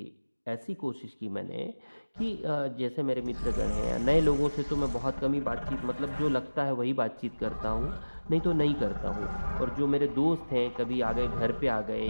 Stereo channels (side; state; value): both; inverted; correlation -1.00